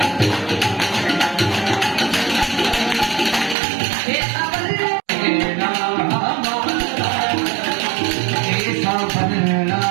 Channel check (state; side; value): drops out; left; at 3.6 s